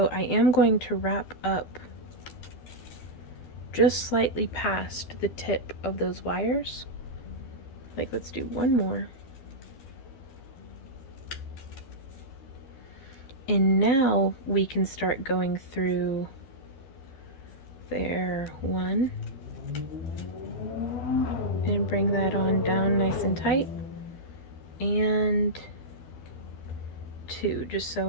I am going to wrap up just slightly past the tip of those wires. Like, let's do one more. And now we can start going through there, 1, and bring that on down nice and tight, and 2, just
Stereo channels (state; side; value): late; right; 12 ms